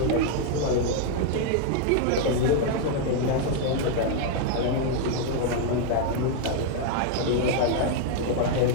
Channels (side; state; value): both; different; correlation 0.00